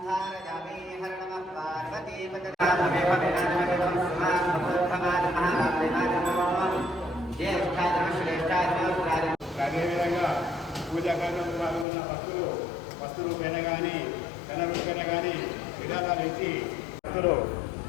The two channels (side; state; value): right; drops out; at 11.9 s